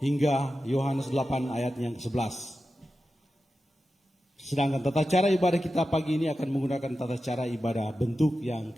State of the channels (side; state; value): both; normal; correlation 0.92